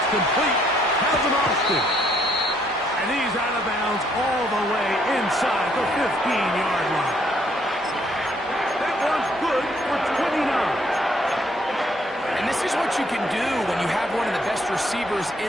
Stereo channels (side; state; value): both; normal; correlation 0.68